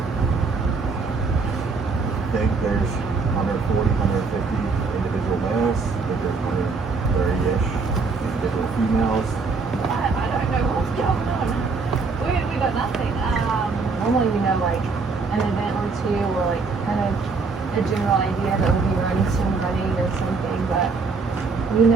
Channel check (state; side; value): quieter; left; 4.4 dB